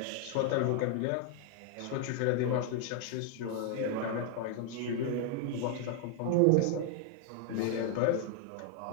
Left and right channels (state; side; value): different; both; correlation 0.00